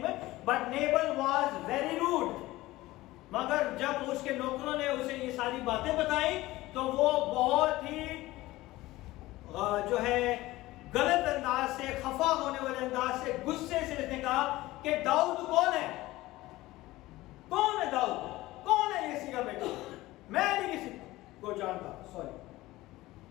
but Nabal was very rude. मगर जब उसके नौकरों ने उसे ये सारी बातें बताई तो वो बहुत ही जो है गलत अंदाज से, खफा होने वाले अंदाज से, गुस्से से इसने कहा कि दाऊद कौन है, कौन है दाऊद, कौन है यिसी का बेटा, मैं नहीं किसी को जानता. Sorry.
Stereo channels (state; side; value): quieter; right; 18.0 dB